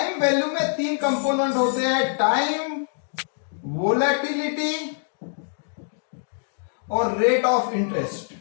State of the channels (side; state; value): right; silent; digital silence